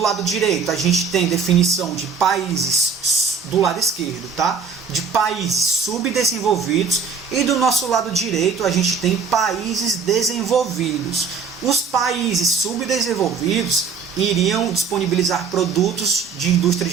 direito, a gente tem definição de países, do lado esquerdo, tá? De países subdesenvolvidos, e do nosso lado direito, a gente tem países desenvolvidos. Os países subdesenvolvidos iriam disponibilizar produtos de indústria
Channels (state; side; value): quieter; left; 5.6 dB